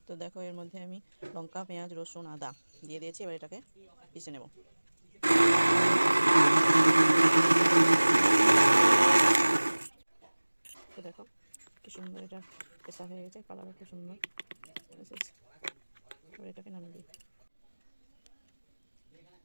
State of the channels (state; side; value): inverted; both; correlation -1.00